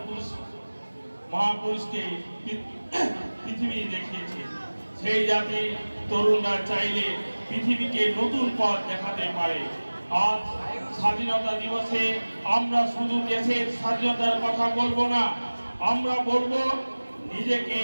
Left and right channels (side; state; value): both; inverted; correlation -1.00